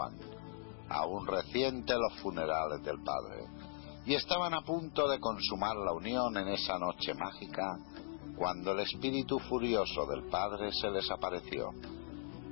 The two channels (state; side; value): silent; right; digital silence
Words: aún reciente los funerales del padre, y estaban a punto de consumar la unión en esa noche mágica, cuando el espíritu furioso del padre se les apareció,